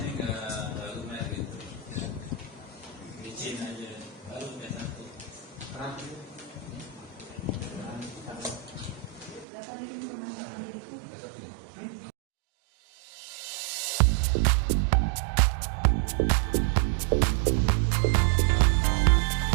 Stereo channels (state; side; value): drops out; left; at 9.5 s